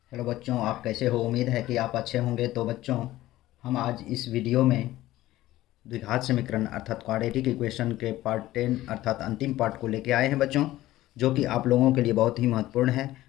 Hello बच्चों, आप कैसे हो? उम्मीद है कि आप अच्छे होंगे। तो बच्चों, हम आज इस वीडियो में द्विघात समीकरण अर्थात क्वाड्रेटिक इक्वेशन के पार्ट 10 अर्थात अंतिम पार्ट को लेके आए हैं बच्चों, जो कि आप लोगों के लिए बहुत ही महत्वपूर्ण है।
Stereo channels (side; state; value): right; quieter; 15.8 dB